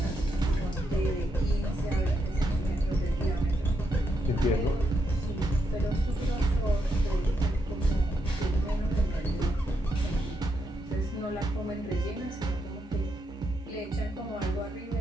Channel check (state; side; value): normal; both; correlation 0.81